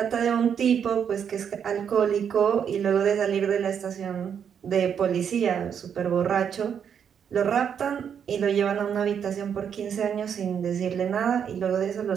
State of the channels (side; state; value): left; quieter; 7.9 dB